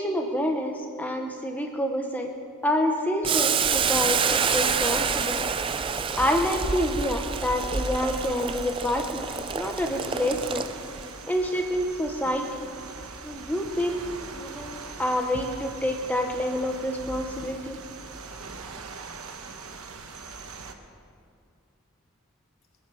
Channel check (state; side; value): normal; both; correlation 0.48